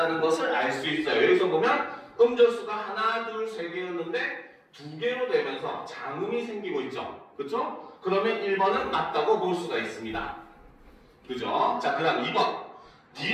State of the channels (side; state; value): both; identical; correlation 1.00